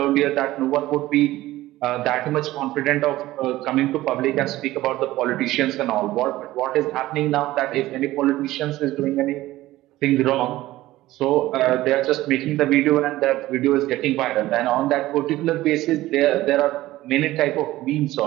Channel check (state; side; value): quieter; left; 16.5 dB